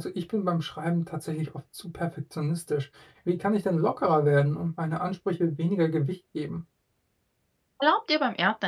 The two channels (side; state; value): both; identical; correlation 1.00